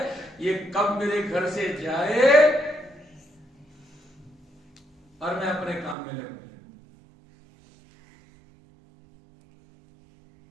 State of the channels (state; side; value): drops out; left; at 6.0 s